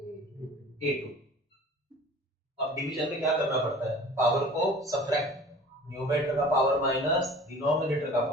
A2। अब डिवीजन में क्या करना पड़ता है? पावर को सब्ट्रैक्ट, न्यूमरेटर का पावर माइनस डिनोमिनेटर का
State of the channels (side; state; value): both; normal; correlation 0.44